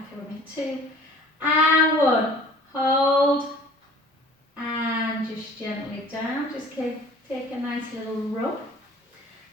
with me, 2, and 1, hold, and just gently down, just take a nice little rub,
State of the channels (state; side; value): normal; both; correlation 0.48